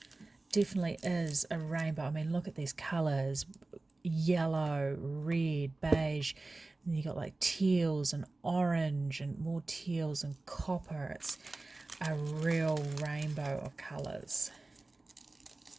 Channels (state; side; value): quieter; left; 3.1 dB